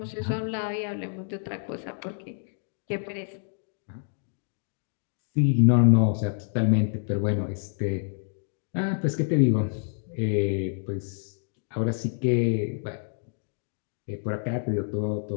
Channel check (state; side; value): silent; right; digital silence